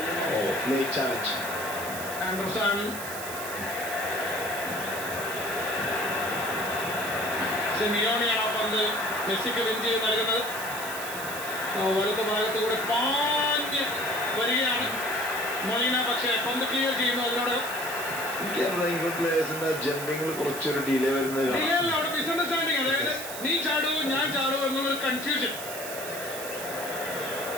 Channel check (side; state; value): right; noise; hiss, 9 dB below the sound